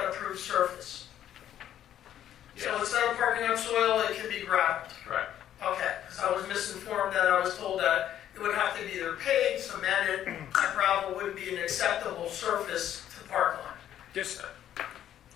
approved surface? Yes. So instead of parking on soil, it can be gravel. Right. Okay, because I was misinformed that I was told that it would have to be either paved, cemented, that gravel wouldn't be an acceptable surface to park on. Just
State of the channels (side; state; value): right; quieter; 11.1 dB